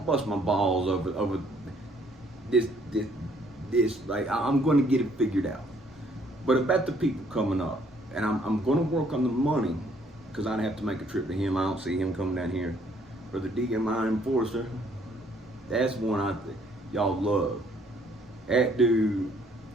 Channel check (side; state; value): both; normal; correlation 0.64